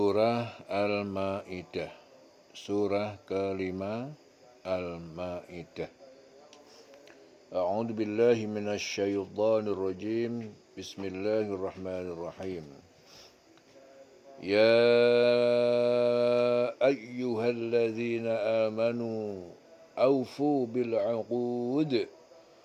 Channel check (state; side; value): identical; both; correlation 1.00